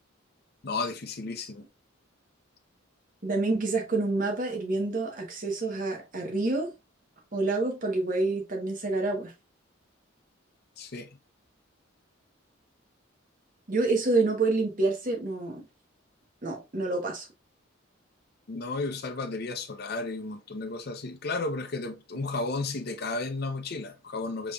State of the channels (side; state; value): both; normal; correlation 0.56